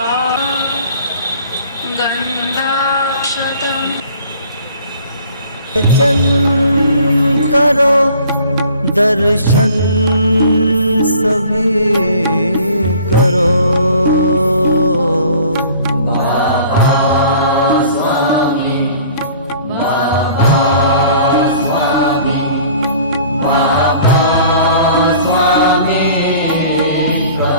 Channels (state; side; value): inverted; both; correlation -0.50